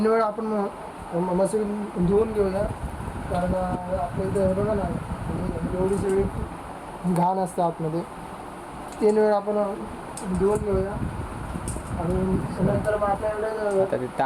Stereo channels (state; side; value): identical; both; correlation 1.00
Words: वेळा आपण मस्त धुवून घेऊया. कारण आपल्या इथे बघा ना एवढी सगळी घाण असते आतमध्ये. 3 वेळा आपण धुवून घेऊया आणि नंतर मग आपल्याकडे आता ते